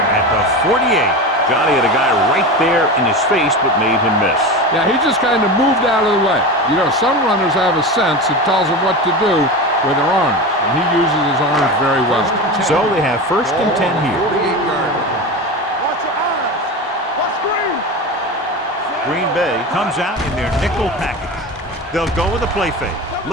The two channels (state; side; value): normal; both; correlation 0.26